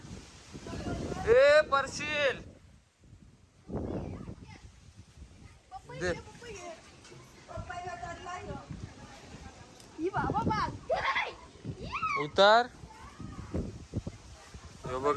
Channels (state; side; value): identical; both; correlation 1.00